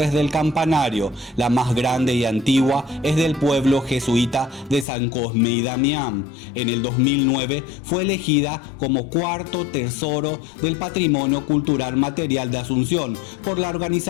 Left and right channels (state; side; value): drops out; right; at 4.9 s